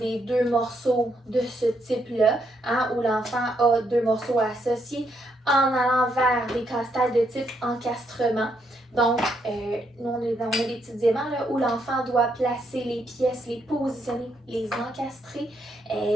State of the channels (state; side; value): normal; both; correlation 0.76